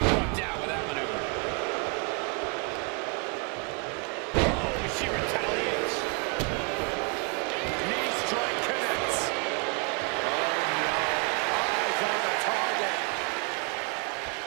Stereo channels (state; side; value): quieter; left; 34.4 dB